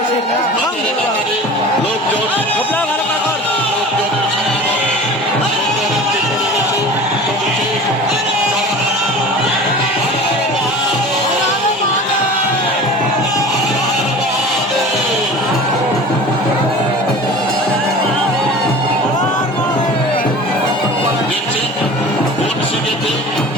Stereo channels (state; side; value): normal; both; correlation 0.39